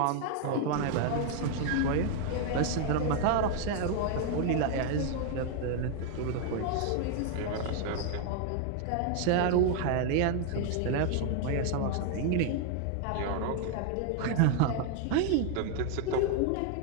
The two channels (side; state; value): both; different; correlation 0.00